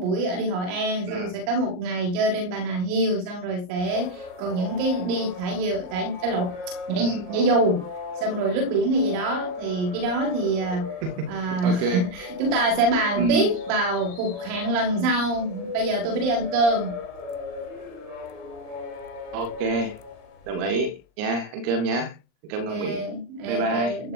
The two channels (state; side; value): late; left; 39 ms